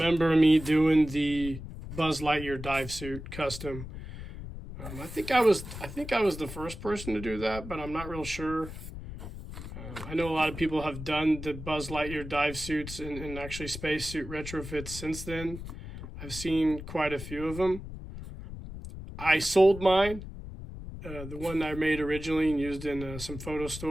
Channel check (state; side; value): noise; left; rumble, 10 dB below the sound